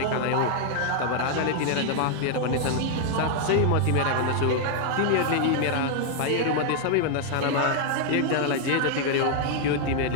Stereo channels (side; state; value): both; different; correlation 0.00